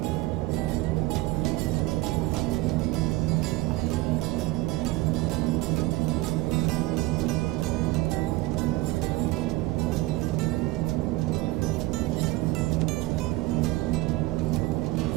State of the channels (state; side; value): quieter; left; 19.5 dB